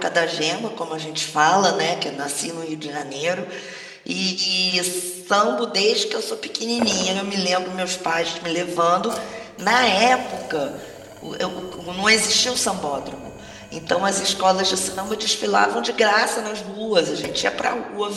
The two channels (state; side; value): identical; both; correlation 1.00